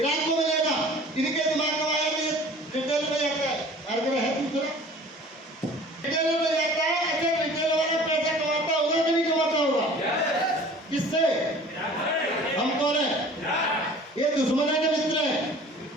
को मिलेगा। इनके दिमाग में आया कि रिटेल में जाता है, हर जगह है दूसरा रिटेल में जाता है। अच्छा रिटेल वाला पैसा कमाता होगा कि नहीं कमाता होगा? किससे? हम कौन है? ये दुश्मन है कि मित्र है?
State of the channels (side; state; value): both; normal; correlation 0.46